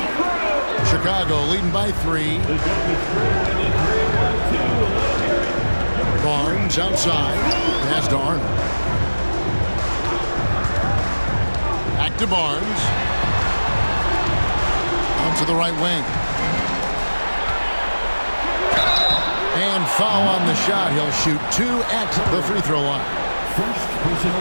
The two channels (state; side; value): inverted; both; correlation -1.00